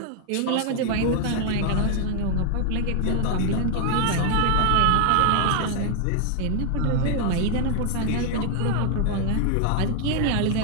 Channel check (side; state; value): both; different; correlation 0.00